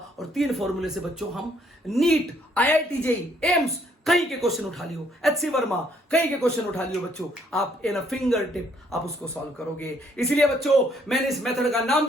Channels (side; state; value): both; normal; correlation 0.67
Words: और 3 फॉर्मूले से बच्चों हम नीट, आईआईटी जेई, एम्स कहीं के क्वेश्चन उठा लियो, एचसी वर्मा कहीं के क्वेश्चन उठा लियो बच्चों, आप इन अ फिंगर टिप आप उसको सॉल्व करोगे। इसलिए बच्चों, मैंने इस मेथड का नाम